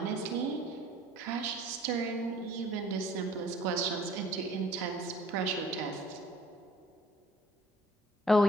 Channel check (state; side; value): normal; both; correlation 0.53